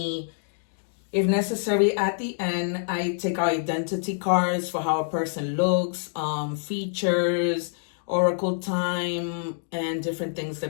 If necessary, at the end, I take our identity cards for how a person looks, features, oracle time, and different things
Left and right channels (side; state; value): right; silent; digital silence